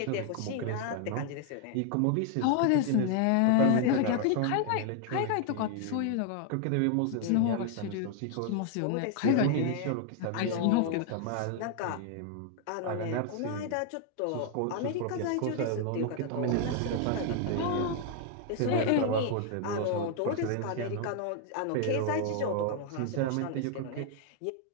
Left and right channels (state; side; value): different; both; correlation 0.00